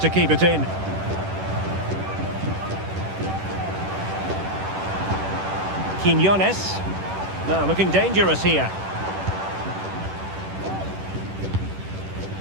keep it in. Quiñones. Now looking dangerous here.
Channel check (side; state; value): left; late; 10 ms